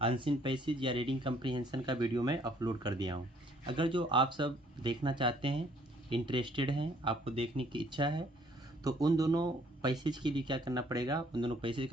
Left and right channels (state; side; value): normal; both; correlation 0.62